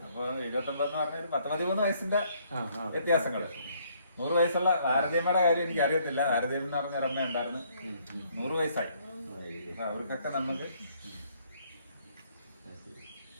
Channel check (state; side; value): inverted; both; correlation -0.66